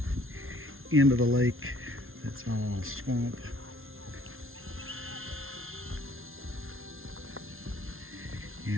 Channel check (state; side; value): late; left; 0.61 ms